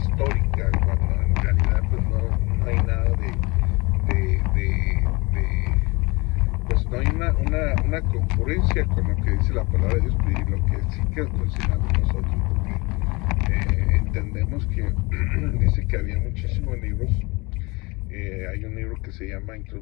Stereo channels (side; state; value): right; quieter; 25.4 dB